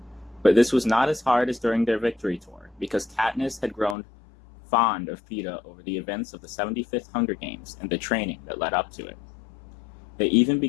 But this was not as hard as during their victory tour, because Katniss had grown fond of Peeta over the events of the 75th Hunger Games and the training that led up to it. They even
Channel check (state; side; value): drops out; right; at 4.0 s